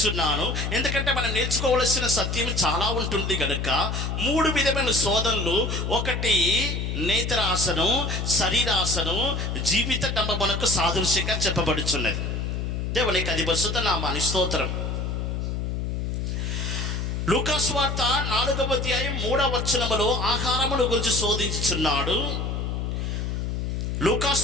ఎందుకంటే మనం నేర్చుకోవలసిన సత్యం చాలా ఉంటుంది కనుక. 3 విధమైన శోధనలు, ఒకటి నేత్రాసను, శరీరాసను, జీవిత డంబమునకు సాదృశ్యంగా చెప్పబడుచున్నది. దేవునికి అది పరిశుద్ధ నామానికి స్తోత్రం. లూకాసు వార్త 4వ అధ్యాయం 3వ వచనములో ఆహారమును గురించి శోధించుచున్నాడు.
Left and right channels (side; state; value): left; noise; hum, 2 dB below the sound